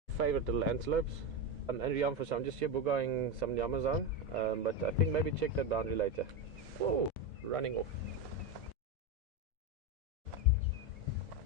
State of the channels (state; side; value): normal; both; correlation 0.13